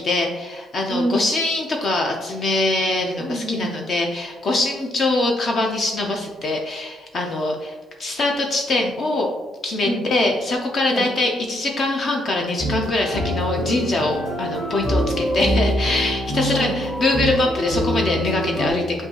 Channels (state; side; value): normal; both; correlation 0.73